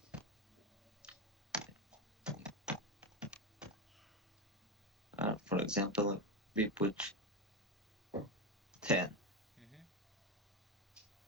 For example, we put 10,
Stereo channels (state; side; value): normal; both; correlation 0.13